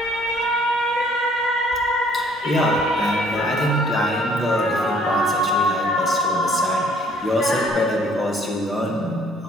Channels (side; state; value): both; normal; correlation 0.59